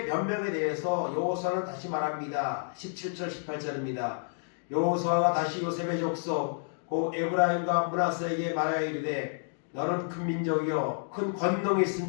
변명에 대해서 여호수아는 다시 말합니다. 17절 18절입니다. 여호수아가 다시 요셉의 족속 곧 에브라임과 므낫세에게 말하여 이르되 너는 큰 민족이요 큰 권능이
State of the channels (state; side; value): silent; right; digital silence